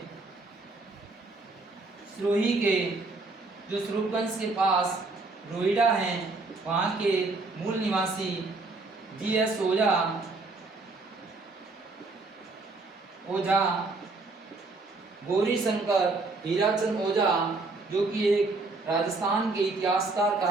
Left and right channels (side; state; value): left; quieter; 3.5 dB